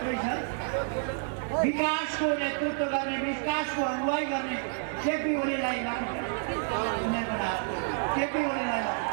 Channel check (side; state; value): left; silent; 58 dB below the other